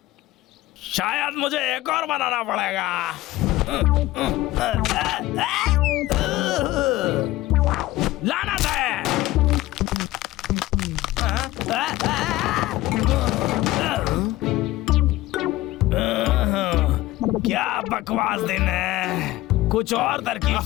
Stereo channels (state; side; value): quieter; right; 16.8 dB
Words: शायद मुझे एक और बनाना पड़ेगा। लानत है। क्या बकवास दिन है। कुछ और तरकीब